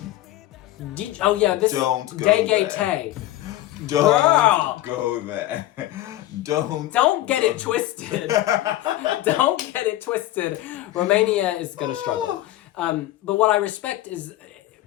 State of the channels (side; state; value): right; quieter; 15.1 dB